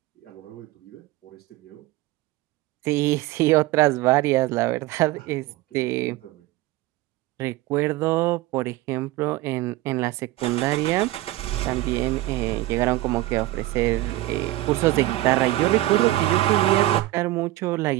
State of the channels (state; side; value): quieter; left; 17.0 dB